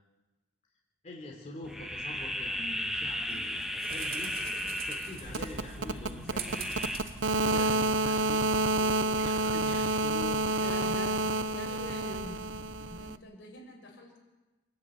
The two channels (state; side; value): normal; both; correlation 0.04